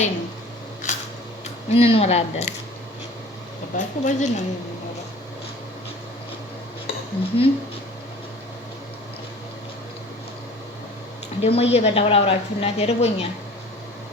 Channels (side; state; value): both; normal; correlation 0.45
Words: ነው፣ እንኖራለን። ገባችሁ? በዚህ ነው የምንኖረው። ደግሞ እየበላሁ ላውራችሁ እናቴ ርቦኛል።